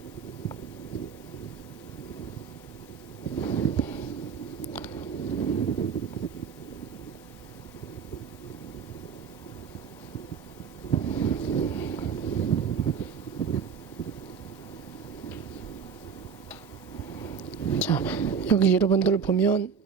자, 여기 여러분들 보면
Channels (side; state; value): left; quieter; 6.5 dB